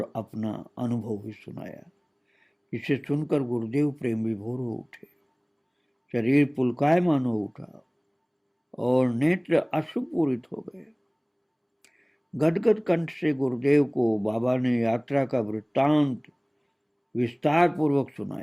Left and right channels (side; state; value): both; identical; correlation 1.00